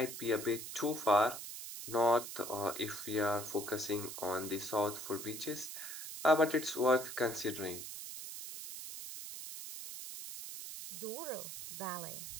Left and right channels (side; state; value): right; noise; hiss, 8 dB below the sound